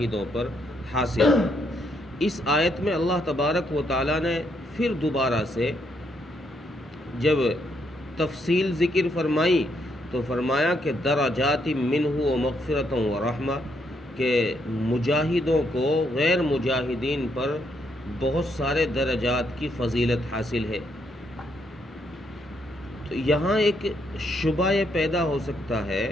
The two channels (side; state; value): both; normal; correlation 0.75